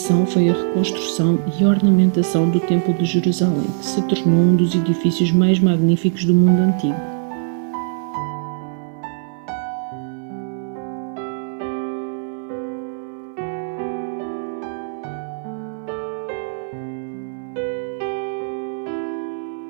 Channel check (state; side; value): silent; left; 65 dB below the other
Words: foi a reconstrução e ornamentação do Templo de Jerusalém, que se tornou um dos edifícios mais magníficos do mundo antigo.